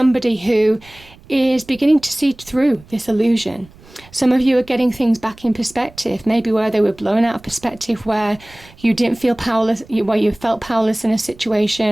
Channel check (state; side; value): noise; right; rumble, 24 dB below the sound